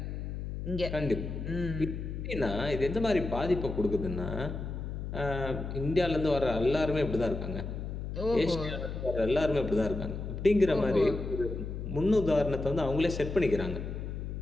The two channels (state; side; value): noise; left; hum, 6 dB below the sound